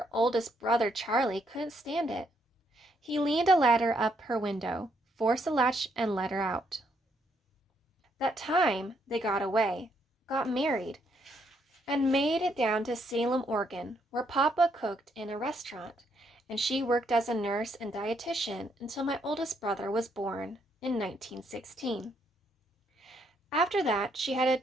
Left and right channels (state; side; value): normal; both; correlation 0.73